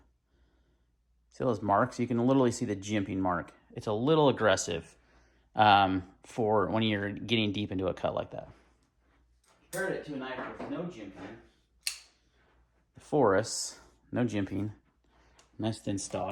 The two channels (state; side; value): identical; both; correlation 1.00